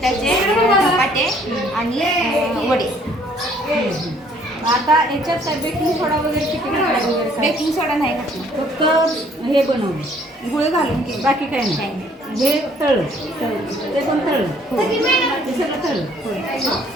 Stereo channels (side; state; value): both; normal; correlation 0.61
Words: धपाटे आणि वडे. आता याच्यात काय बेकिंग सोडा वगैरे किती घालायला वगैरे बेकिंग सोडा नाही घातला, फक्त हे बनवलं गुळ घालून केलं. बाकी काय नाही. हे तळलं ते पण तळलं हे सगळं तळलं